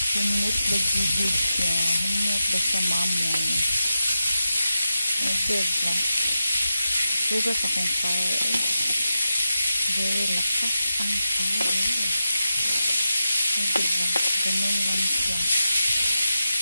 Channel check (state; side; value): inverted; both; correlation -0.90